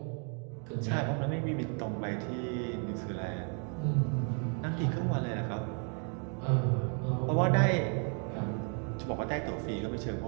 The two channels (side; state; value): left; quieter; 39.2 dB